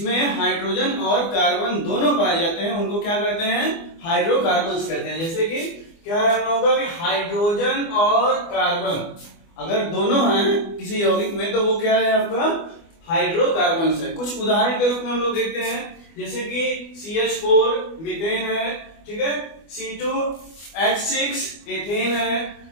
हाइड्रोजन और कार्बन दोनों पाए जाते हैं उनको क्या कहते हैं? हाइड्रोकार्बन्स कहते हैं। जैसे कि क्या है हम लोगों का कि हाइड्रोजन और कार्बन अगर दोनों हैं किसी यौगिक में तो वो क्या है आपका? हाइड्रोकार्बन्स है। कुछ उदाहरण के रूप में हम लोग देखते हैं, जैसे कि CH4 मीथेन है, ठीक है, C2H6 एथेन है,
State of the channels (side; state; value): right; late; 24 ms